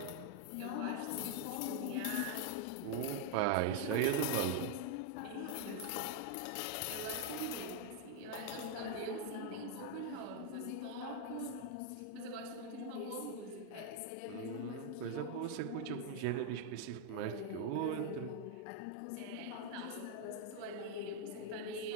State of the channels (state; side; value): different; both; correlation 0.00